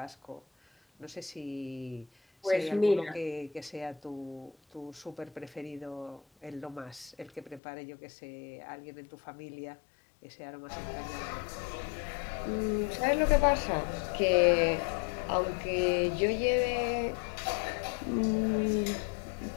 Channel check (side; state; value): right; drops out; at 7.6 s